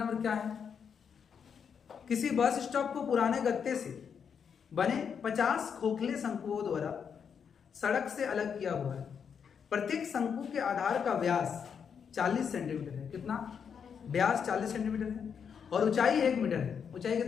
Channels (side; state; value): right; quieter; 7.0 dB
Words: क्या है। किसी बस स्टॉप को पुराने गत्ते से बने 50 खोखले शंकुओं द्वारा सड़क से अलग किया हुआ है। प्रत्येक शंकु के आधार का व्यास 40 सेंटीमीटर है। कितना? व्यास 40 सेंटीमीटर है और ऊंचाई 1 मीटर है। ऊंचाई